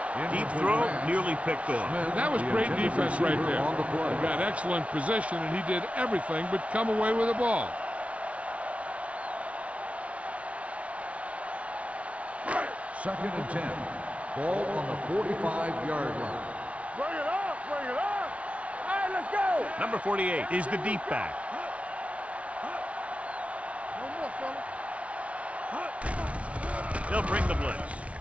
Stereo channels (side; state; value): left; late; 0.064 ms